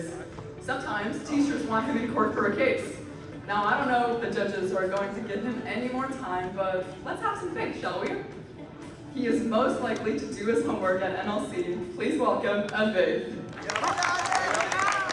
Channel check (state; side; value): identical; both; correlation 1.00